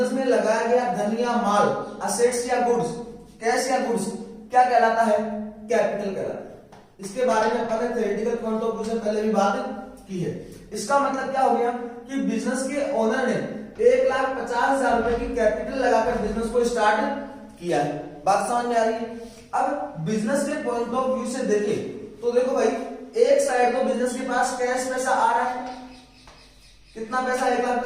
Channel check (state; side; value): identical; both; correlation 1.00